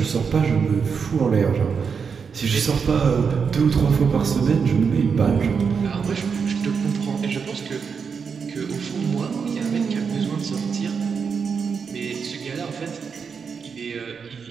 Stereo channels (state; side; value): quieter; left; 6.0 dB